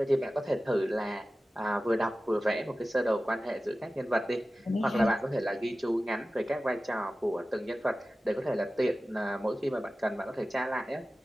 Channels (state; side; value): normal; both; correlation 0.95